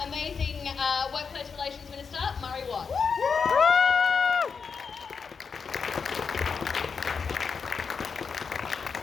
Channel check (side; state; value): right; quieter; 5.7 dB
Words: amazing Workplace Relations Minister, Murray Watt.